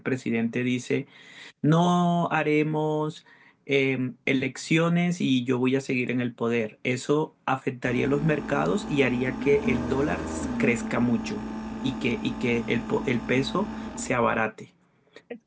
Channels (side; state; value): both; identical; correlation 1.00